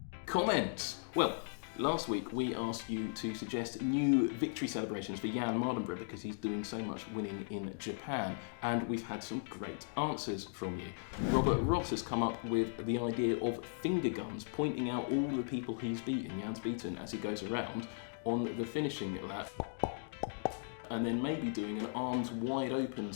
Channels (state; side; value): silent; right; digital silence